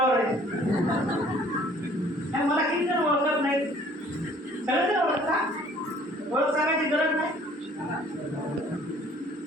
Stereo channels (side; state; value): both; normal; correlation 0.55